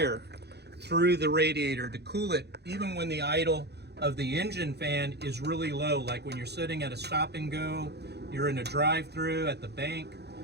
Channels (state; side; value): late; left; 0.48 ms